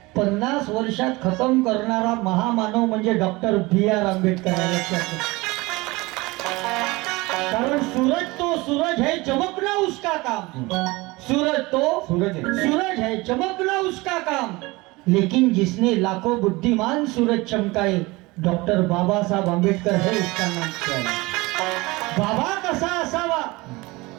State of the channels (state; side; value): quieter; left; 22.5 dB